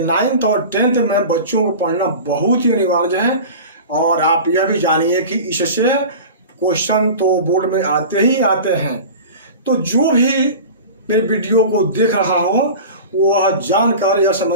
9th और 10th में बच्चों को पढ़ना बहुत ही अनिवार्य है। और आप यह भी जानिए कि इससे क्वेश्चन तो बोर्ड में आते ही आते हैं। तो जो भी मेरे वीडियो को देख रहा हो वह जानकर यह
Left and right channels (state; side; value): inverted; both; correlation -0.35